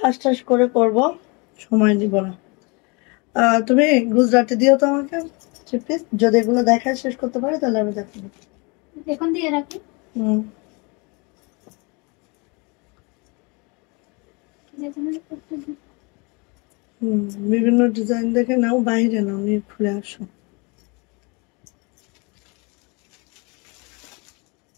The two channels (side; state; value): right; quieter; 29.8 dB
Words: ঠাস করে করবো, সময় দিব না। তুমি গুজরাটি দিও তো আমাকে প্লিজ, যদি এগুলো দেখায় শেষ করতে পারি তাহলে আমি দেখাবো। এখন দিয়ে রাখি। বিভিন্ন ডিজাইন দেখে নাও, বাইরে নাও, নিয়ে খুলে আসো।